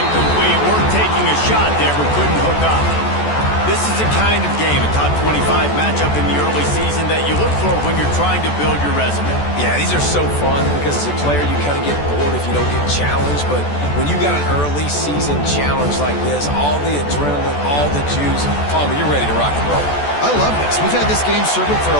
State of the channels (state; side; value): late; right; 14 ms